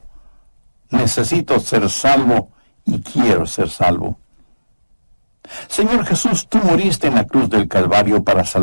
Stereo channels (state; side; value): inverted; both; correlation -1.00